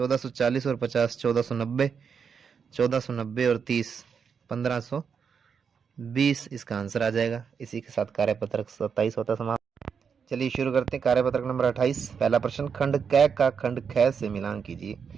और 50 1490, 1490 और 30 1520 इसका आंसर आ जाएगा। इसी के साथ कार्यपत्रक 27 होता समाप्त। चलिए शुरू करते हैं कार्यपत्रक नंबर 28। पहला प्रश्न, खंड क का खंड ख से मिलान कीजिए।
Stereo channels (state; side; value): quieter; left; 6.5 dB